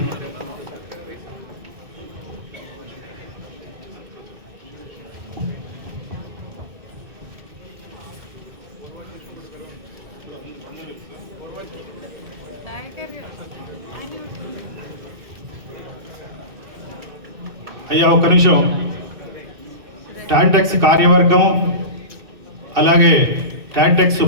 అయ్యా ఒక్క నిమిషం. టాంటెక్స్ కార్యవర్గం, అలాగే టాంటెక్స్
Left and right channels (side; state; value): left; late; 2.6 ms